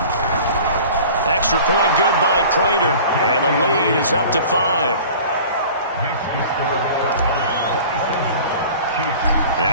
Extra point good by Prater. And the lead is up to 5.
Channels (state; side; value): inverted; both; correlation -0.43